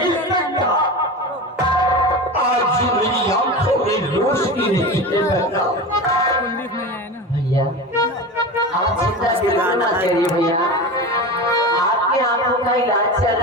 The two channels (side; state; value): both; normal; correlation 0.27